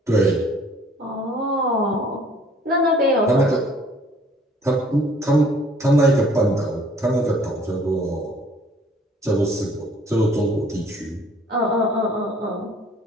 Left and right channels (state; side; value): normal; both; correlation 0.57